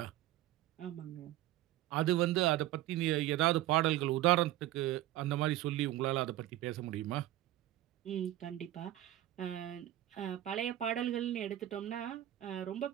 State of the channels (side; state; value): left; quieter; 14.5 dB